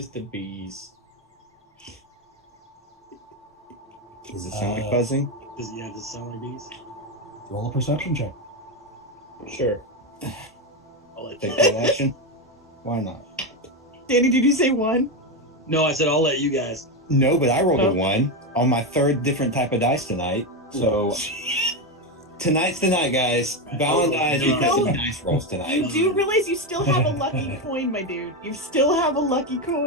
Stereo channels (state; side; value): normal; both; correlation 0.11